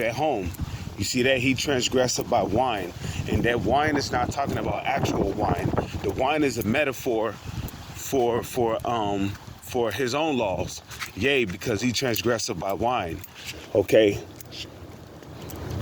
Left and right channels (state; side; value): identical; both; correlation 1.00